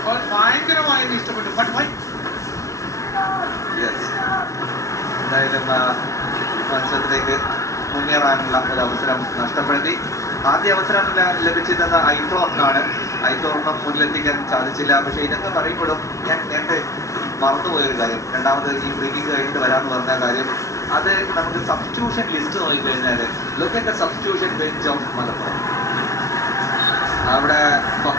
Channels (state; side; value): late; right; 0.15 ms